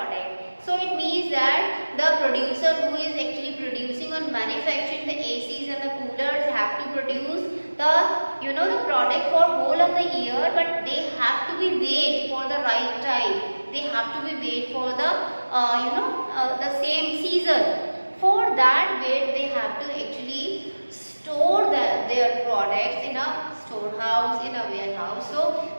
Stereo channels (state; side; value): inverted; both; correlation -1.00